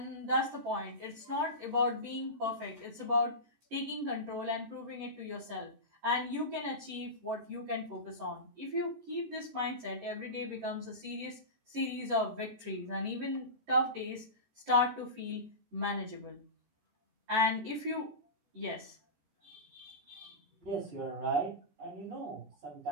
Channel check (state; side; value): late; left; 14 ms